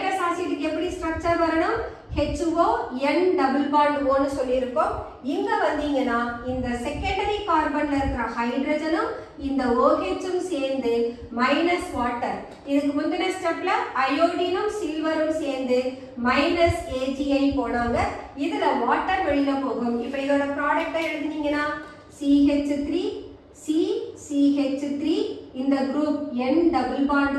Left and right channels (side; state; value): both; identical; correlation 1.00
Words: ஆசிட்க்கு எப்படி ஸ்ட்ரக்சர் வரணும்? HO N double bond O னு சொல்லியிருக்கோம். இங்க வந்தீங்கன்னா இந்த செகண்டரி கார்பன்ல இருக்கிற ஹைட்ரஜனும் இந்த OH-ம் சேர்ந்து மைனஸ் வாட்டர். இதுக்கு முந்தின ஸ்டெப்ல அயோடினும் சில்வரும் சேர்ந்து -AgI போனாங்க. இதுல வாட்டர் வெளியில போகும். இப்ப இதோட ப்ராடக்ட்டை எழுதினீங்கன்னா CH3 CH3 இந்த group N double bond